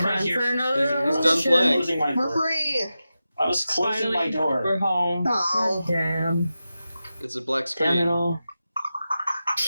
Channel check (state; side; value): inverted; both; correlation -0.92